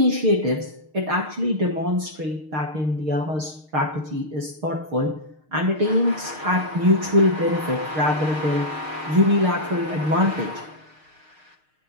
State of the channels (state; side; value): late; left; 6.5 ms